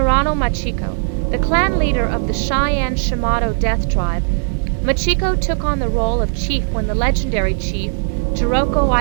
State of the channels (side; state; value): left; silent; digital silence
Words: Machiko, the clan leader of the Cheyenne Shimado Death Tribe. Machiko took on the role of chief when the legendary chief, Jiroko